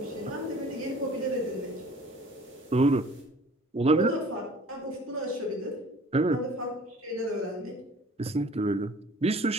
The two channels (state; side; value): normal; both; correlation 0.50